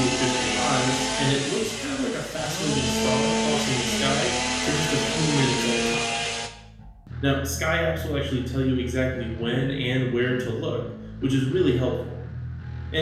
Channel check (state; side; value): identical; both; correlation 1.00